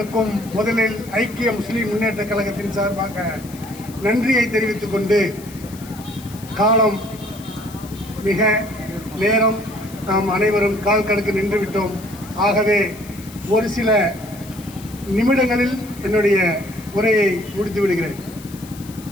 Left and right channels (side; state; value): left; noise; hiss, 19 dB below the sound